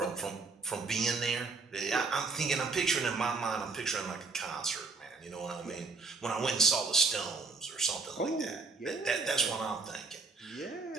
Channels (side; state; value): left; quieter; 4.1 dB